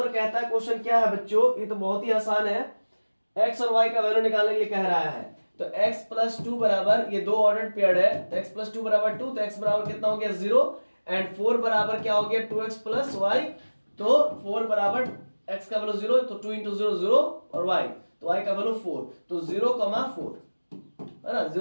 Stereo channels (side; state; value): both; inverted; correlation -1.00